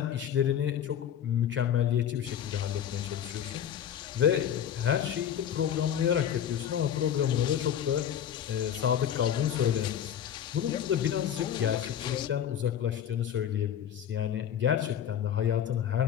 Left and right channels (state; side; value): quieter; right; 9.6 dB